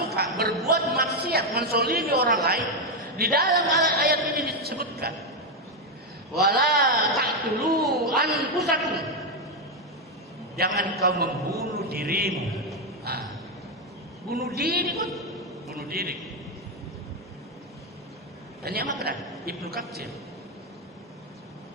berbuat maksiat, mensolimi orang lain, di dalam ayat ini disebutkan, wala taqtulu anfusakum, jangan kau membunuh dirimu. Bunuh diri pun, bunuh diri. Tanya apa Ibnu Katsir?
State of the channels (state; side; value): normal; both; correlation 0.05